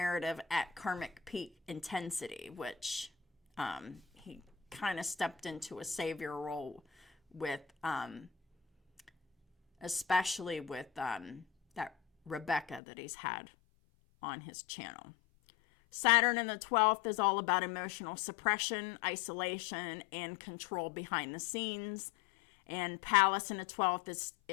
at karmic peak intensity, which he kind of stepped into a savior role with, especially with that Rebecca that he's had on his channel. Saturn in the 12th is all about emotional suppression, isolation, and control behind the scenes. And Pallas in the 12th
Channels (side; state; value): right; drops out; at 12.8 s